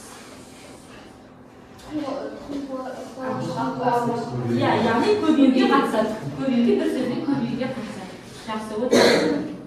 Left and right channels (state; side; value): identical; both; correlation 1.00